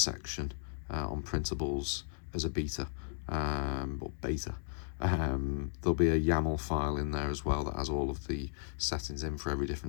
on printables as a beta, or beta. There'll be a YAML file in there as well that has all of the settings in for every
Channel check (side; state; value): right; silent; 54 dB below the other